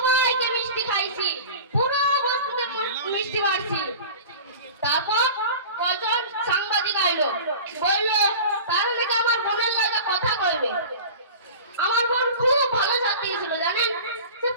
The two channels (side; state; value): both; inverted; correlation -0.36